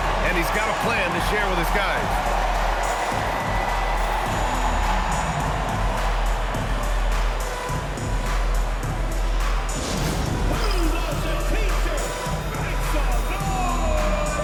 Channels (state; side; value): identical; both; correlation 1.00